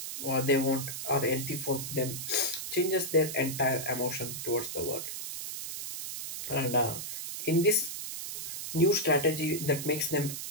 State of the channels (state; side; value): noise; right; hiss, 6 dB below the sound